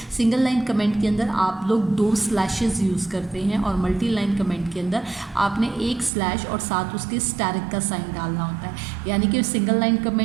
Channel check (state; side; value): drops out; left; at 6.1 s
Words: सिंगल लाइन कमेंट के अंदर आप लोग दो स्लैशेस यूज़ करते हैं और मल्टी लाइन कमेंट के अंदर आपने एक स्लैश और साथ उसके स्टैरिक का साइन डालना होता है। यानी कि सिंगल लाइन